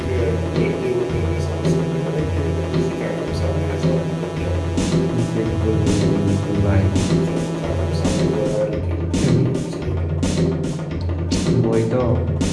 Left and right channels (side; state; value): both; identical; correlation 1.00